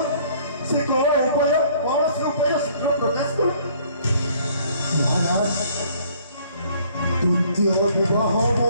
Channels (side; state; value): both; inverted; correlation -0.59